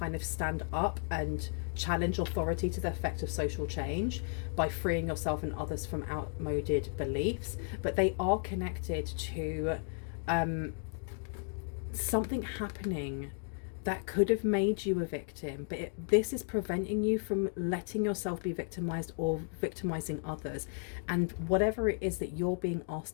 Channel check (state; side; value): silent; right; 55 dB below the other